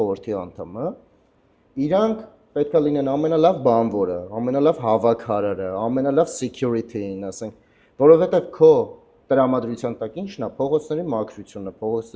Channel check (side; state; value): both; identical; correlation 1.00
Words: անդամը, իրանք պետք է լինեն ամենալավ բանվորը, ամենալավ հավաքարարը, ամենալավ security-ին, ասենք, որովհետև քո տրամադրության տակ ինչն է, փողոցների մաքրությունը,